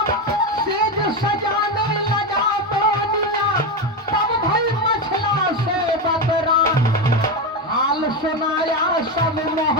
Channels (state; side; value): normal; both; correlation 0.14